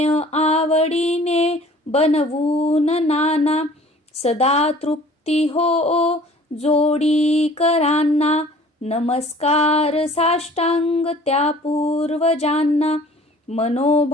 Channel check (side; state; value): both; normal; correlation 0.50